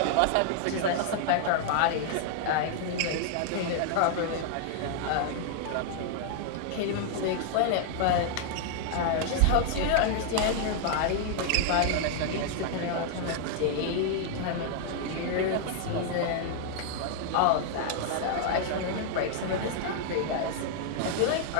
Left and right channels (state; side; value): different; both; correlation 0.00